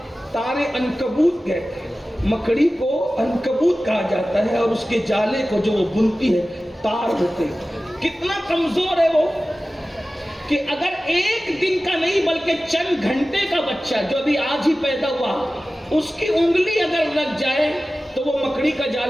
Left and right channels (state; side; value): normal; both; correlation 0.96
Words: تار عنکبوت کہتے ہیں. مکڑی کو عنکبوت کہا جاتا ہے، اور اس کے جالے کو جو وہ بنتی ہے تار ہوتے ہیں. کتنا کمزور ہے وہ کہ اگر ایک دن کا نہیں بلکہ چند گھنٹے کا بچہ جو ابھی آج ہی پیدا ہوا، اس کی انگلی اگر لگ جائے تو وہ مکڑی کا